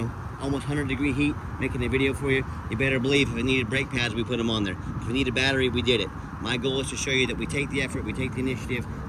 almost 100-degree heat making a video for you, you better believe if it needed brake pads, we put them on there. If we need a battery, we did it. My goal is to show you that we take the effort, we take the initiative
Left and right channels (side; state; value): both; identical; correlation 1.00